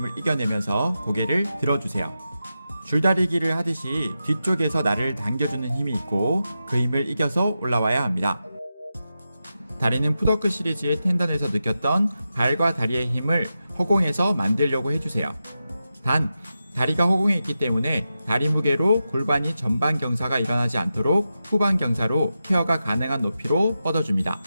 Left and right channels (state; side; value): inverted; both; correlation -0.90